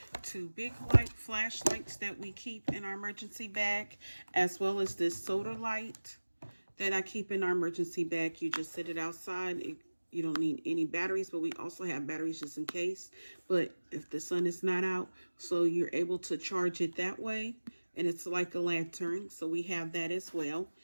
two big light flashlights that we keep in our emergency bag, as well as this soda light that I keep in our emergency bag. You just set it outside. You don't need any batteries, but we also have batteries just in case. But if the sun is not out, so you're able to charge it that way. And it's like a lantern, so we have that as well.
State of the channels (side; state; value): both; inverted; correlation -1.00